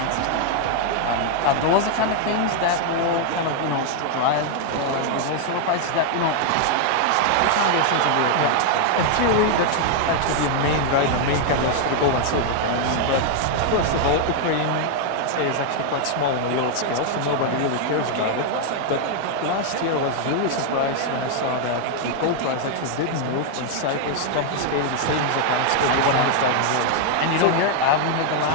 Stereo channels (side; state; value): both; different; correlation 0.00